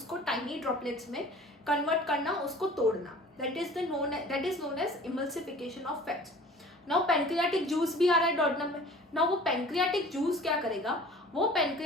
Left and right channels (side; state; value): both; normal; correlation 0.46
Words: टाइनी ड्रॉपलेट्स में कन्वर्ट करना, उसको तोड़ना, that is known as emulsification of fats. Now pancreatic juice भी आ रहा है डॉटनम में. नाउ वो पैंक्रियाटिक जूस क्या करेगा, वो